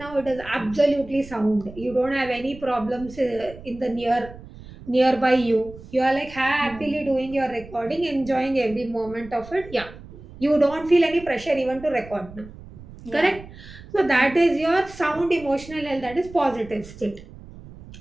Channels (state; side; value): noise; right; rumble, 17 dB below the sound